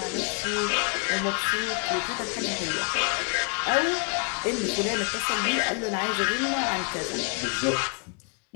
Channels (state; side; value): quieter; right; 37.5 dB